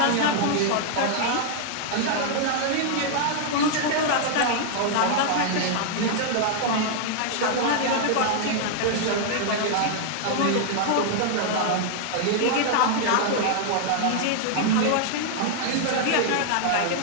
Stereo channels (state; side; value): different; both; correlation -0.01